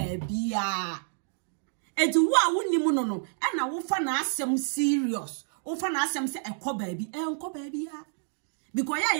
bia enti wo a wonimu no e na wo fa na asem serious wo fa na asem se enko ba bia because ya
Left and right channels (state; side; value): silent; left; digital silence